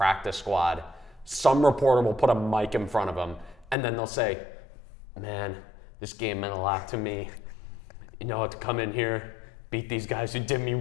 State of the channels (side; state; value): right; drops out; at 3.8 s